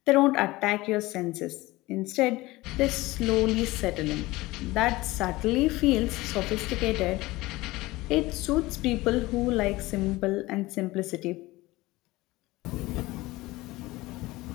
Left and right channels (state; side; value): quieter; right; 19.9 dB